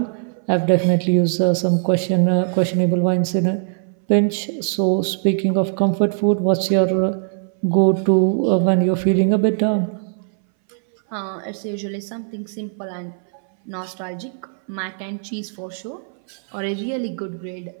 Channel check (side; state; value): left; silent; 62 dB below the other